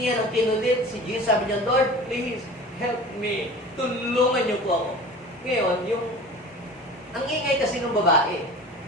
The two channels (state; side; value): normal; both; correlation 0.39